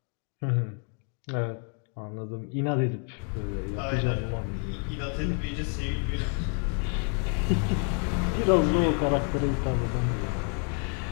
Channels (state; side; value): quieter; right; 39.2 dB